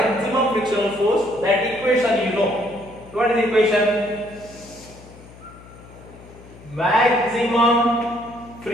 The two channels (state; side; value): noise; left; hum, 20 dB below the sound